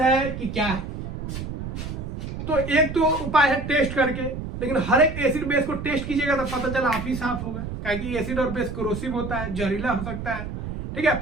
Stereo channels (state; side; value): noise; right; rumble, 7 dB below the sound